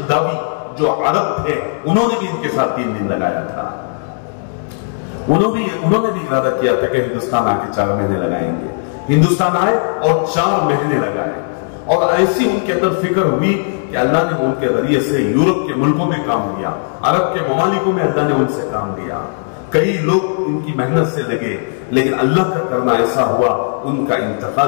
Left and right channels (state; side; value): silent; right; digital silence